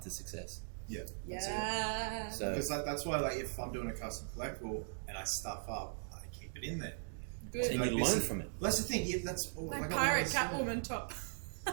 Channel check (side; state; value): left; silent; digital silence